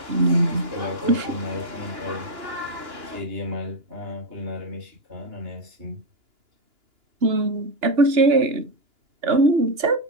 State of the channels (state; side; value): late; left; 2.9 ms